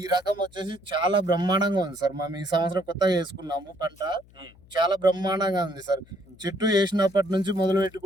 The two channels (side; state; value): left; noise; hum, 26 dB below the sound